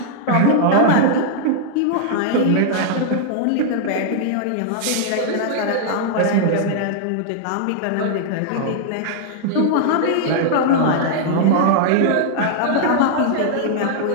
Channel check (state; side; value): different; both; correlation -0.01